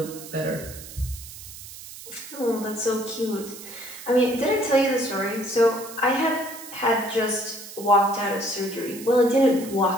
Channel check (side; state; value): right; noise; hiss, 14 dB below the sound